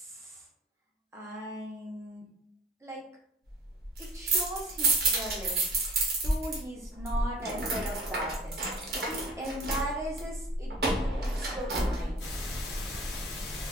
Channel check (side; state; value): both; normal; correlation 0.45